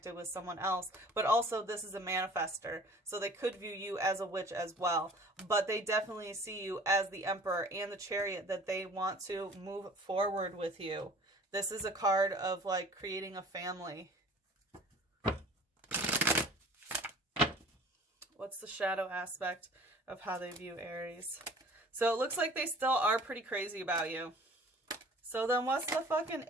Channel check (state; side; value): normal; both; correlation 0.47